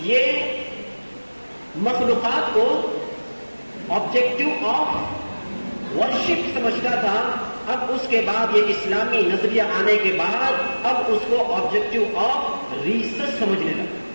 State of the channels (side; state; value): both; inverted; correlation -1.00